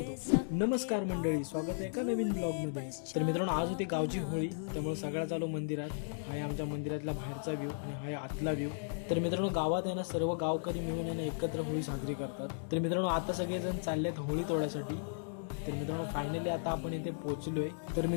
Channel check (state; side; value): silent; right; digital silence